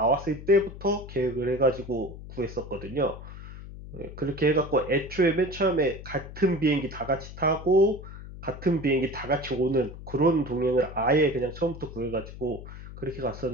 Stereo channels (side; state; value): left; noise; hum, 13 dB below the sound